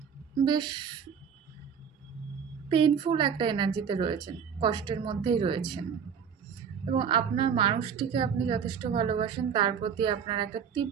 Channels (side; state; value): left; quieter; 7.2 dB